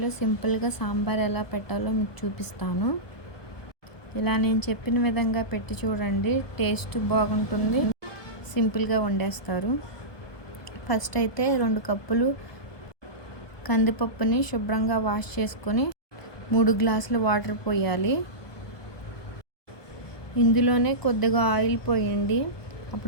సింపుల్గా సాంబార్ ఎలా పెట్టాలో మీకు చూపిస్తాను. ఇలా నేను చెప్పిన విధంగా పెట్టి చూడండి, టేస్ట్ బాగుంటుంది, సింపుల్గా వండేస్తారు. ఫస్ట్ అయితే 2 కప్పులు కందిపప్పుని శుభ్రంగా వాష్ చేసుకొని 3 గ్లాసులు వాటర్ పోయాలి. ఇందులోనే కొద్దిగా ఆయిల్ పోయండి,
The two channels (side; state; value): right; late; 1.2 ms